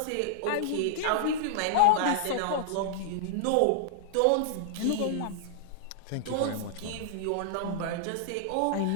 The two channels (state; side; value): different; both; correlation -0.01